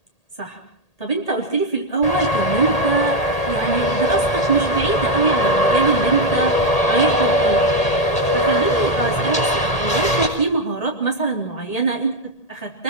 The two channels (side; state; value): right; late; 1.8 ms